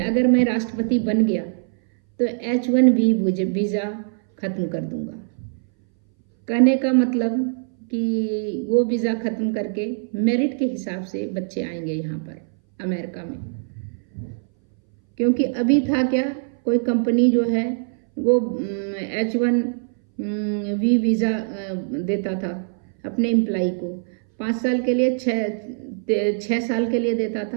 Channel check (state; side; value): silent; left; 61 dB below the other